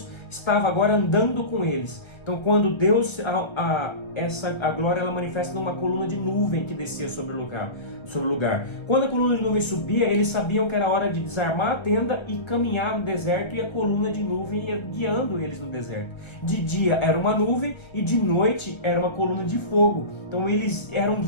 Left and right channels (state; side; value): late; right; 1.3 ms